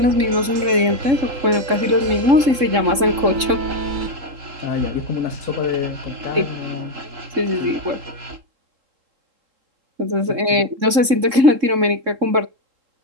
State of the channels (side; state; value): left; late; 3.7 ms